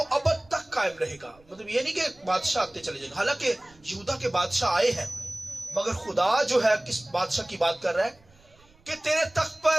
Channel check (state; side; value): noise; right; rumble, 29 dB below the sound